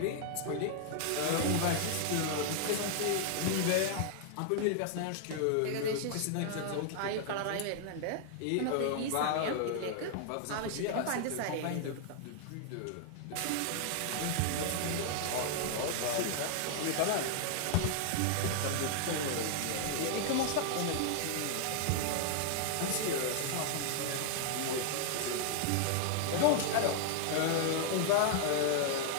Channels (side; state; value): both; different; correlation 0.00